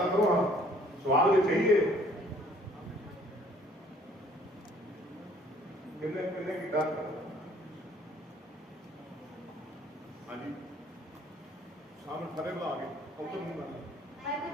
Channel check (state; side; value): normal; both; correlation 0.58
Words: ਕਰੋ ਹਾਂ ਸਵਾਲ ਜੇ ਚਾਹੀਏ ਕਿੰਨੇ ਕੀਤਾ? ਹਾਂਜੀ ਸਾਹਮਣੇ ਖੜੇ ਲਾ ਕੇ ਉੱਤਰ ਨੂੰ ਨਾ